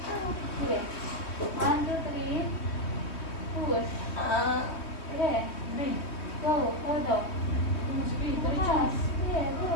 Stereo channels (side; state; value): right; late; 3.2 ms